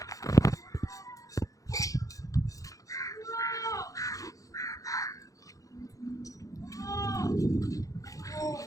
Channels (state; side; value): late; right; 0.16 ms